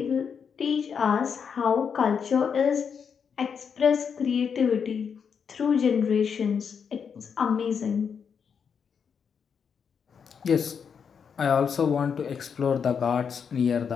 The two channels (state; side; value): quieter; right; 6.7 dB